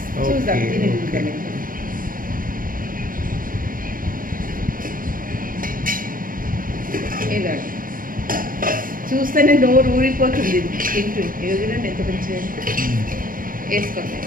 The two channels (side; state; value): left; late; 0.41 ms